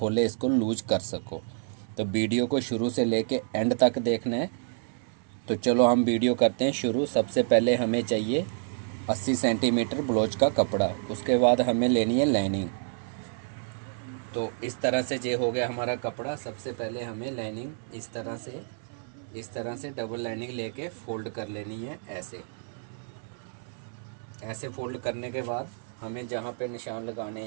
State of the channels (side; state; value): left; silent; 59 dB below the other